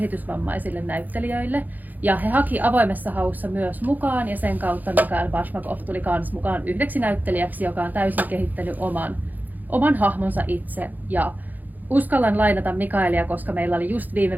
näyttelijöille. Ja he haki avoimessa haussa myös mukaan ja sen kautta Mikael Bashmakov tuli kans mukaan yhdeksi näyttelijäksi, joka on täysin kehittänyt oman hahmonsa itse. Ja uskallan lainata Mikaelia, koska meillä oli just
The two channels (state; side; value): late; left; 0.083 ms